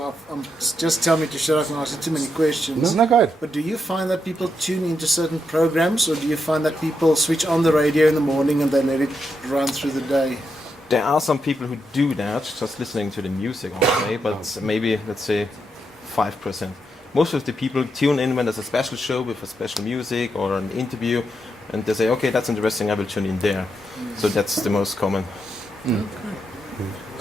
just tell me to shut up and ask you too many questions. Isn't that good? But do you find that people tune into certain programs, or do you find that people switch on the radio in the morning and they let it run through the day? There are some people who do that, just listening to the music all day, but maybe, let's say, 5%. Most of the people tune in when there's a special show with a special music or an interview, and they say, okay, that's interesting, I will tune in there. So that's the most common.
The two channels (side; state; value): both; normal; correlation 0.82